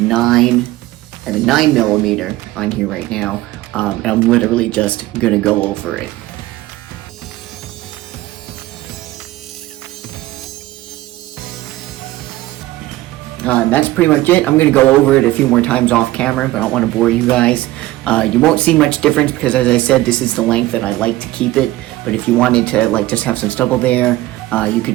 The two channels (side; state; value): left; quieter; 17.1 dB